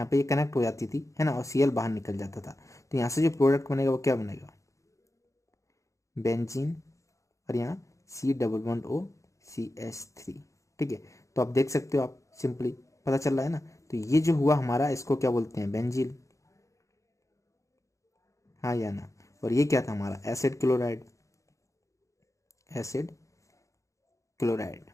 पे ये कनेक्ट हो जाती थी, है ना, और Cl बाहर निकल जाता था। तो यहाँ से जो प्रोडक्ट बनेगा वो क्या बनेगा, बेंजीन, और यहाँ C double bond O CH3, ठीक है। तो आप देख सकते हो, आप सिंपली पता चल रहा है ना। तो ये जो हुआ हमारा, इसको क्या बोलते हैं, बेंजीन, हाँ या ना। और ये क्या था हमारा, एसिड क्लोराइड, एसिड क्लोराइड।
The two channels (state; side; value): late; right; 0.15 ms